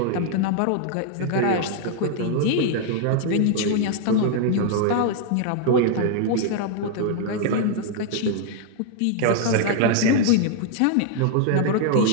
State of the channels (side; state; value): both; different; correlation 0.00